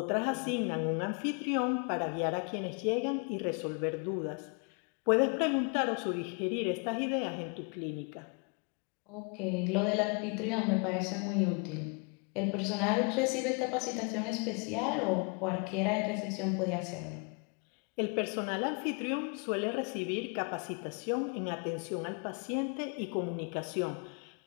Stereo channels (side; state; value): right; quieter; 34.8 dB